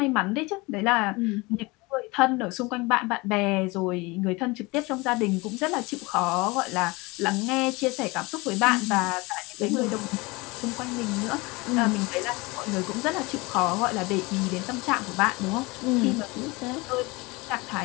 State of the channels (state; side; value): quieter; right; 24.4 dB